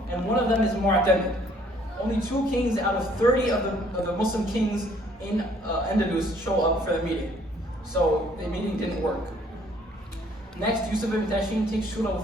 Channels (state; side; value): normal; both; correlation 0.61